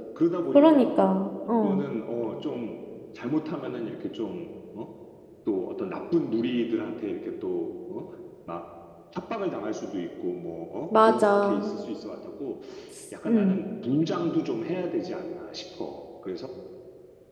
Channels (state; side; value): identical; both; correlation 1.00